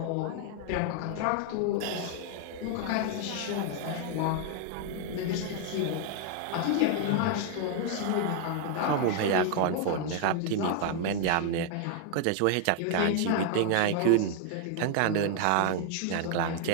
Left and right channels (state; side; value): different; both; correlation 0.00